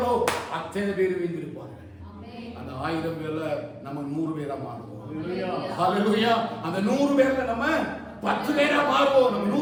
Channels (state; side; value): identical; both; correlation 1.00